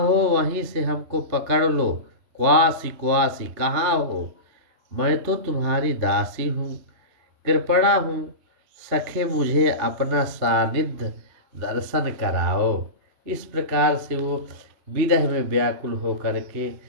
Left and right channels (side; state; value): left; late; 3.3 ms